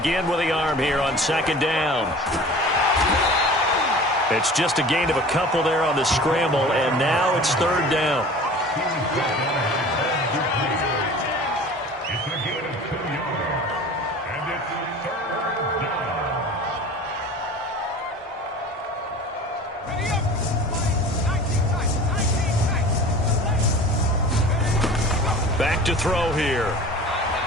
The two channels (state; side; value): normal; both; correlation 0.41